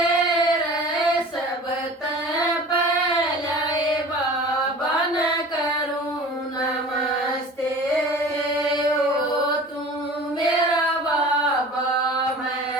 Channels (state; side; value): normal; both; correlation 0.41